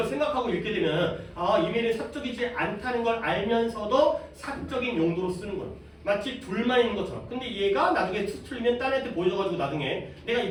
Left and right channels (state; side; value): identical; both; correlation 1.00